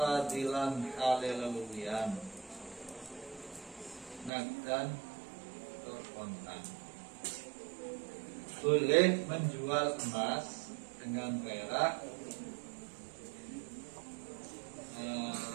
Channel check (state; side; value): drops out; left; at 4.3 s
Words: halalawiyan nagdan tur kontan. Boleh menjual emas dengan perak